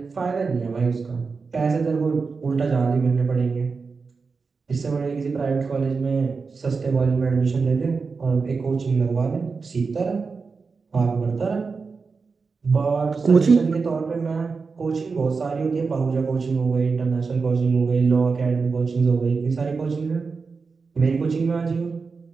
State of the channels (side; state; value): left; quieter; 4.7 dB